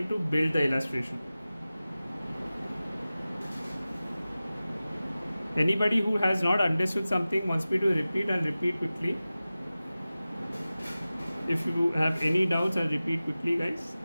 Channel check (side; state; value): both; inverted; correlation -0.96